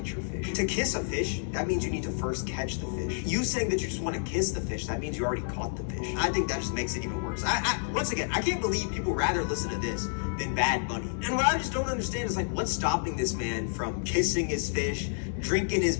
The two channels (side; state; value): right; silent; digital silence